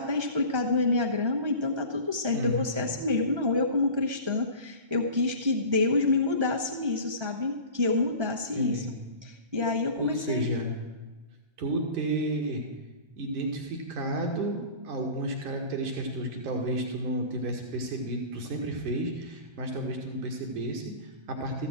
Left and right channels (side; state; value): left; late; 1.3 ms